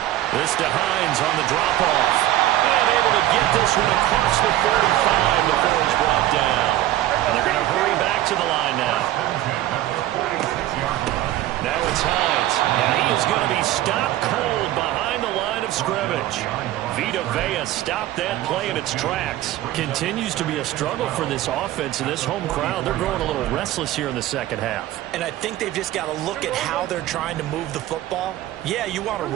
This to Hines on the drop-off. And able to get this one across the 45 before he's brought down. And they're going to hurry back to the line now. Now it's Hines. And he is going to be stopped cold behind the line of scrimmage. Vita Vea stopped that play in its tracks. Continues to be a struggle for this offense and this home crowd. They're growing a little restless here in the second half. And I think they've just got to look at how they're trying to move the football. Yeah, you want to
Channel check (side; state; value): left; quieter; 14.3 dB